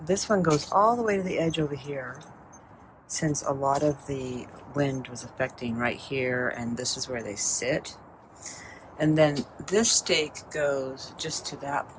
this one goes all the way to the edge over here, since a lot of the wind was affecting right here, and this is where they sit. And then this stake goes just to that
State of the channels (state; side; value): identical; both; correlation 1.00